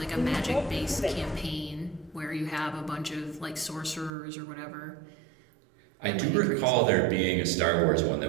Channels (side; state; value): left; drops out; at 4.1 s